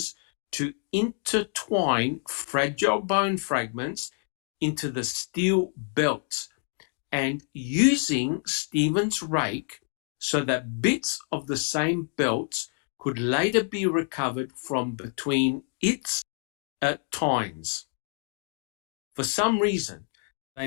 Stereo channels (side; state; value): right; silent; 56 dB below the other